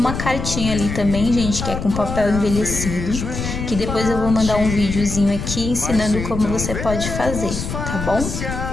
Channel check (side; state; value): left; noise; rumble, 5 dB below the sound